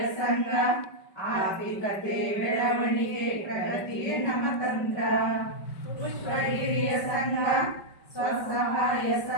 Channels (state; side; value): late; right; 5.3 ms